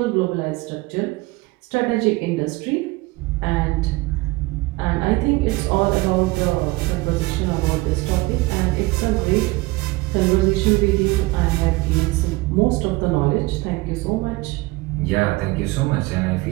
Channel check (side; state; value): left; quieter; 22.2 dB